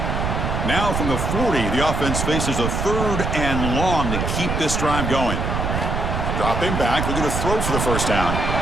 Now from the 40, the offense faces a 3rd and long to keep this drive going. Dropping back, looking to throw for the 1st down.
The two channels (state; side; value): noise; right; rumble, 1 dB below the sound